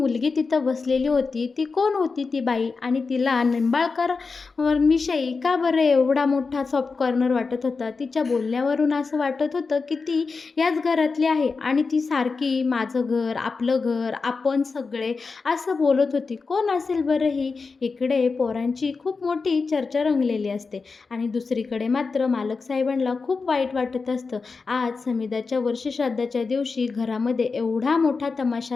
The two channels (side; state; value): right; quieter; 4.5 dB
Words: तिथं बसलेली होती ती कोण होती ती बाई, आणि तिला निंबाळकर विषयी का बरं एवढा मोठा सॉफ्ट कॉर्नर वाटत होता. तिच्या बोलण्यावरून असं वाटत होतं की ती याच घरातली आहे आणि ती सारखी माझं घर, आपलं घर, आपण सगळे असं बोलत होती. कोण असेल बरं ही? इकडे पोरांची खूप मोठी चर्चा रंगलेली असते आणि दुसरीकडे मात्र मालक साहेबांना खूप वाईट वाटत असतं. आज समिधाच्या वर्षश्राद्धाच्या दिवशी घरामध्ये एवढा मोठा